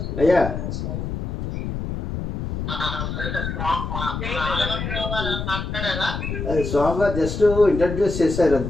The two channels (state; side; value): noise; left; rumble, 4 dB below the sound